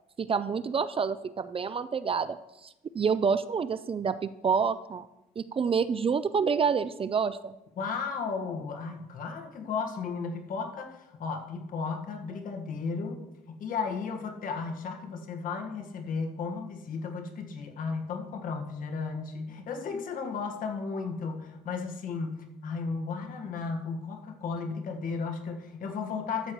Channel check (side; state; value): both; normal; correlation 0.51